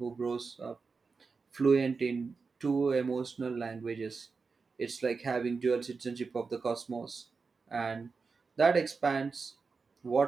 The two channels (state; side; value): quieter; left; 4.7 dB